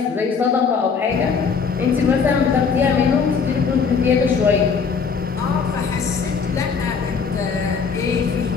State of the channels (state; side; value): quieter; right; 5.7 dB